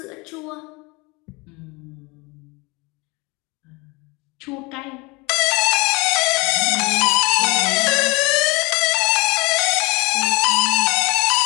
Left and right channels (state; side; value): quieter; right; 26.2 dB